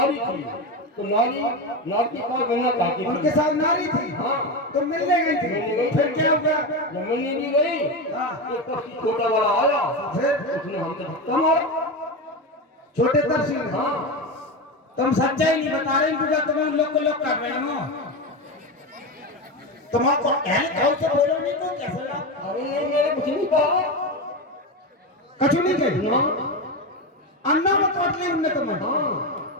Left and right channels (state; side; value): normal; both; correlation 0.17